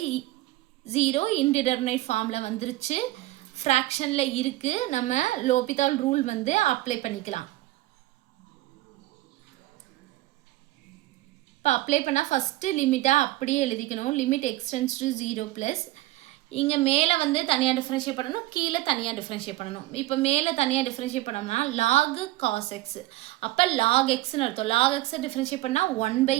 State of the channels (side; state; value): left; quieter; 17.9 dB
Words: இன்டிடெர்மினேட் ஃபார்மில் வந்துருச்சு. ஃப்ராக்ஷனில் இருக்குது. நம்ம லோபிதால் ரூல் வந்து அப்ளை பண்ணிக்கலாம். இப்போ அப்ளை பண்ணால் ஃபஸ்ட்டு லிமிட்டாக அப்படியே எழுதிக்கணும். Limit x tends to 0 plus இங்கே மேலே வந்து தனியாக டிஃப்ரென்ஷியேட் பண்ணணும், கீழே தனியாக டிஃப்ரென்ஷியேட் பண்ணணும். இப்போ மேலே தனியாக டிஃப்ரென்ஷியேட் பண்ணோம்னா log cos x. அப்போ log xன்னு அர்த்தம். log x டிஃப்ரென்ஷியேட் பண்ணால்